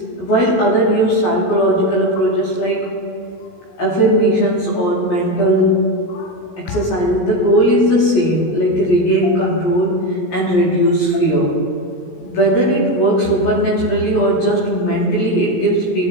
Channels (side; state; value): right; late; 17 ms